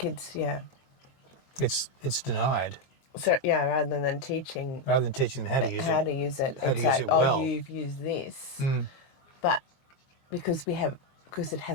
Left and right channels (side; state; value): right; late; 22 ms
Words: It's denied. So, rather than teaching them how to use it. It's like, well. You've used this. But because it